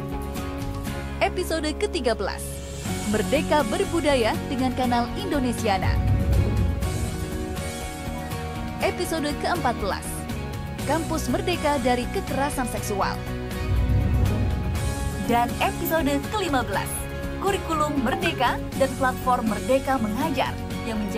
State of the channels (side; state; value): both; identical; correlation 1.00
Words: Episode ke-13, Merdeka Berbudaya dengan Kanal Indonesiana. Episode ke-14, Kampus Merdeka dari Kekerasan Seksual. Dan episode ke-15, Kurikulum Merdeka dan Platform Merdeka Mengajar yang